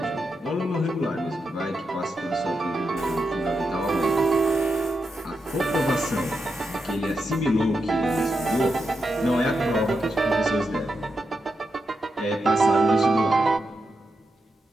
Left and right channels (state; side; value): normal; both; correlation 0.86